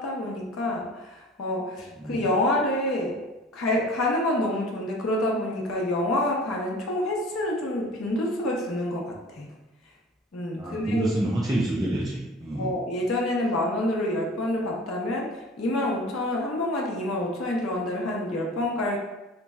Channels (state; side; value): normal; both; correlation 0.43